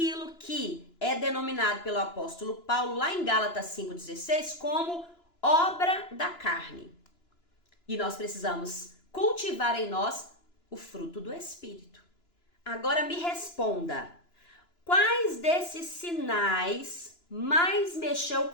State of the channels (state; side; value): late; right; 2.9 ms